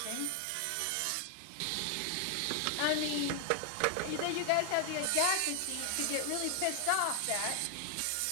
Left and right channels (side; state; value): both; different; correlation 0.00